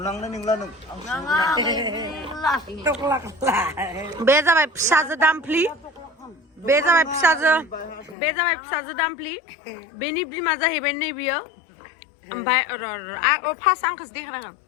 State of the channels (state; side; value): drops out; right; at 8.2 s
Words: नंला नों बे जाबाय फिसाजो दामफ्लि बे जाबाय फिसाजो दामफ्लि बेनि बिमा जाहैबाय नै बियो ओमफ्राय फार्स्ट आंखौसो देखायनांगोन